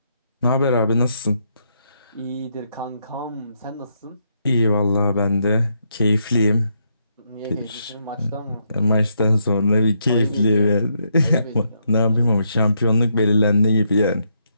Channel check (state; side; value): inverted; both; correlation -0.77